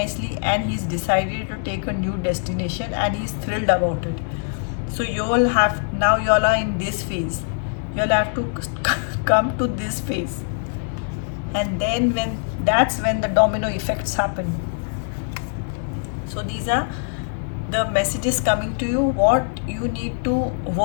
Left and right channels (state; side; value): silent; right; 64 dB below the other